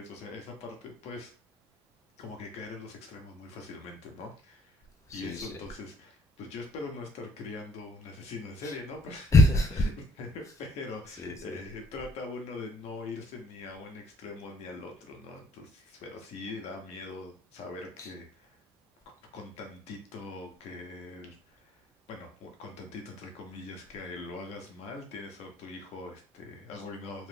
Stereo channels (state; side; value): normal; both; correlation 0.64